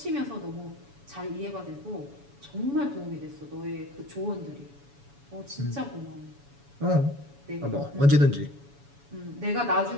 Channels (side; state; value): left; late; 7.1 ms